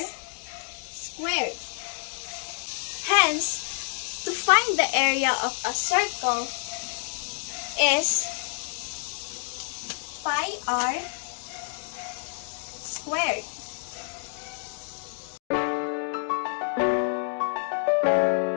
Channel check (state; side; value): silent; right; 59 dB below the other